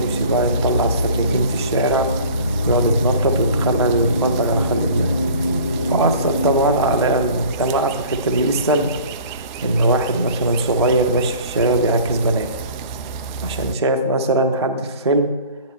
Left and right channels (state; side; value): inverted; both; correlation -0.45